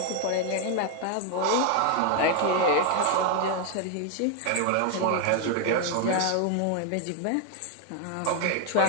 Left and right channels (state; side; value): different; both; correlation 0.01